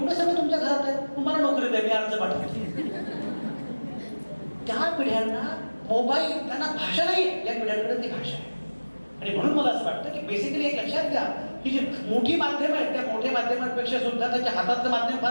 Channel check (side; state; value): both; inverted; correlation -1.00